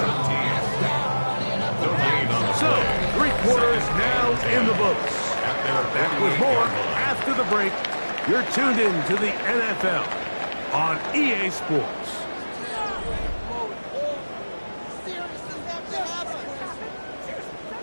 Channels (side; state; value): both; inverted; correlation -1.00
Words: So, 3 quarters now in the books. Back with more after the break. You're tuned in to the NFL on EA Sports.